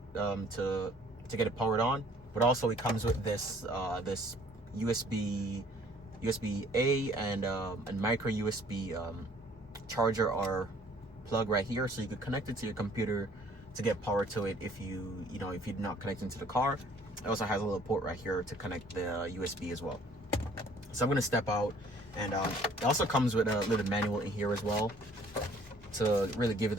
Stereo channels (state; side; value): normal; both; correlation 0.57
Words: to get it powered on. But also it comes with this this USB A and micro USB charger or plug right here, so you could connect it to your computer to get power to it if you're not connecting to the car. It also has a little port right here to connect the USB as well. So I'm gonna step out, and it also comes with a little manual in here as well to really give you